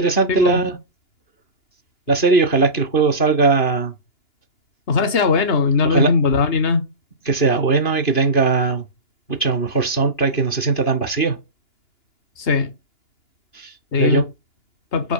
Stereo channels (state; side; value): late; right; 2.9 ms